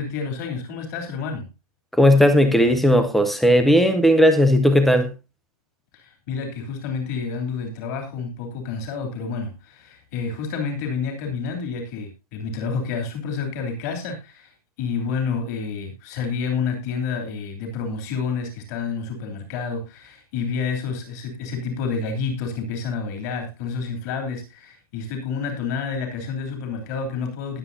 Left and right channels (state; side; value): normal; both; correlation 0.63